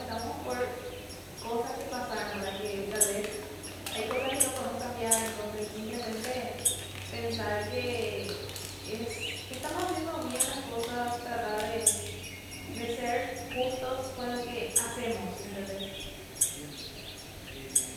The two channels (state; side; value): identical; both; correlation 1.00